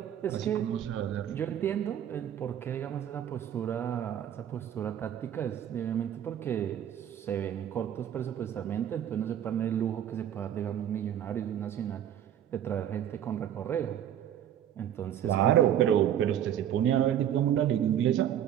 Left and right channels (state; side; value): quieter; left; 10.3 dB